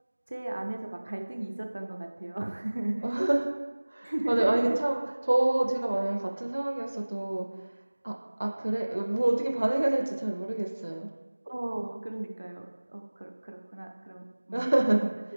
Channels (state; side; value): inverted; both; correlation -1.00